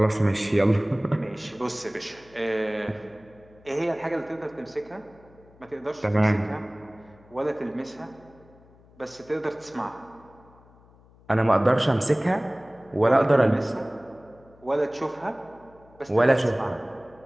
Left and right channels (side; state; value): left; noise; hum, 27 dB below the sound